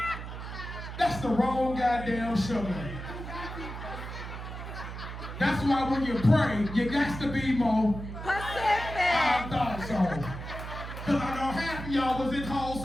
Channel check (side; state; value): right; noise; hum, 9 dB below the sound